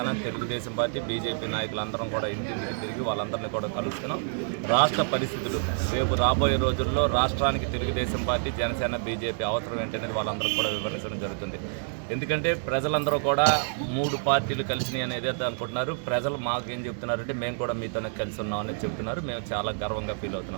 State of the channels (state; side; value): silent; left; digital silence